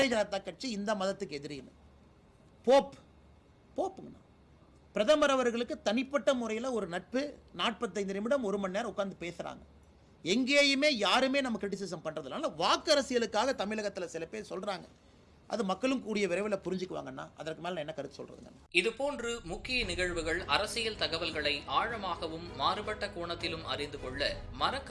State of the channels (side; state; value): both; identical; correlation 1.00